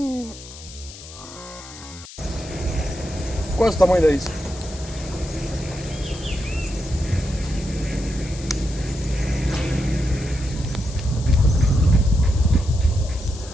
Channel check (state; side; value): noise; left; hiss, 16 dB below the sound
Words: Quase o tamanho da isca.